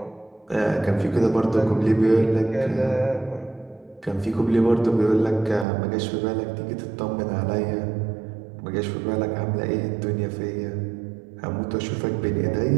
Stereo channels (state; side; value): drops out; left; at 5.7 s